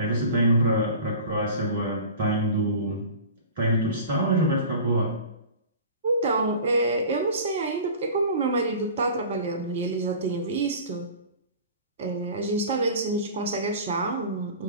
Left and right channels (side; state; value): both; inverted; correlation -0.39